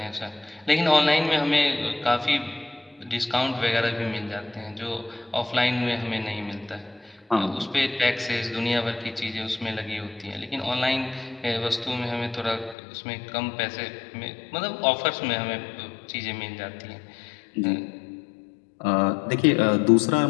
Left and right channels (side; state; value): right; drops out; at 12.8 s